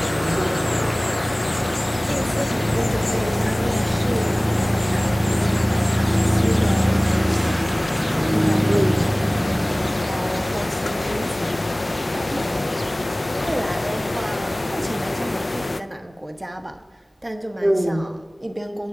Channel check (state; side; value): normal; both; correlation 0.98